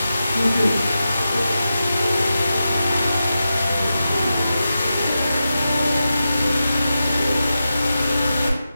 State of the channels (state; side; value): inverted; both; correlation -0.90